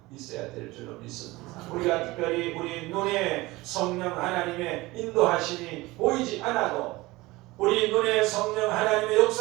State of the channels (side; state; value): left; quieter; 20.6 dB